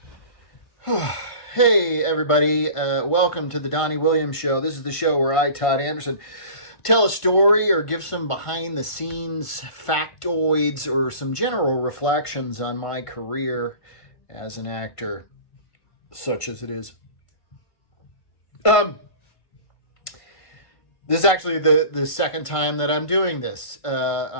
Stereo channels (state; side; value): late; right; 1.5 ms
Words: hey everybody! Welcome to the Donnie Williams Show. This is the show where I, Todd Anderson, tell a story or give some behind-the-scenes factoids or some general reflections on my career as an actor, such as it is. This is actually the second time that I'm doing this.